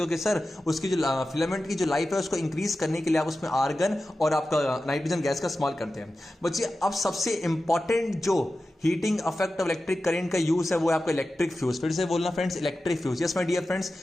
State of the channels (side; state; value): both; normal; correlation 0.93